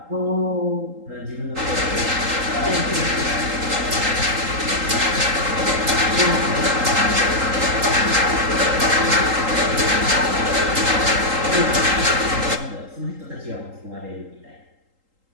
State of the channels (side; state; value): left; late; 3.8 ms